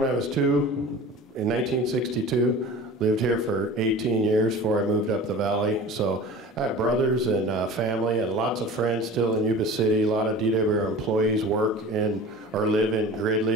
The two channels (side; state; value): both; normal; correlation 0.38